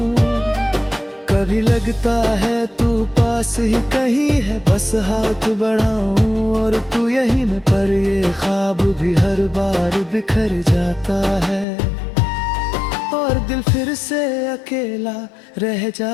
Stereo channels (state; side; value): drops out; right; at 11.7 s